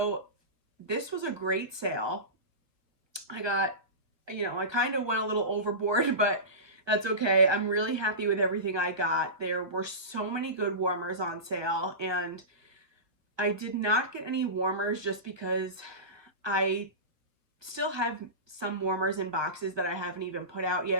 this was a great sale. I kind of went a little overboard, but that's okay. I'm really happy with everything I got. There were so many good warmers on sale, and I did not get any warmers just because I still have some warmers in boxes that I haven't even put out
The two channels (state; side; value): late; left; 1.4 ms